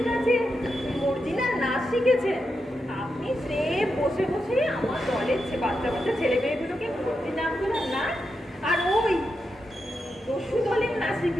কাছে অরিজিনাল নাচ শিখেছেন। আপনি সে বসে বসে আমার দলের বাচ্চা বাচ্চা ছেলে মেয়েগুলোকে ভর্তি নামগুলো নাচ আর ওই দস্যু দলের নাচ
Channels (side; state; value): both; normal; correlation 0.86